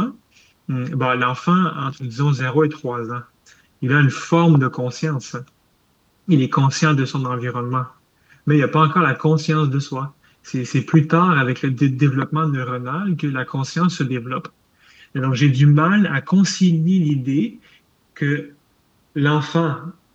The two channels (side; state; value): both; identical; correlation 1.00